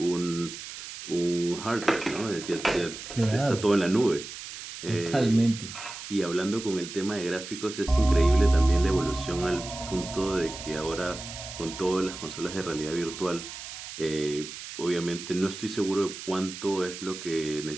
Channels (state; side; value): noise; right; hiss, 11 dB below the sound